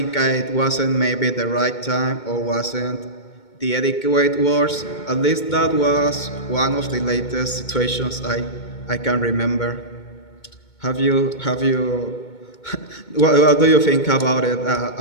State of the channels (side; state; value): right; late; 2.2 ms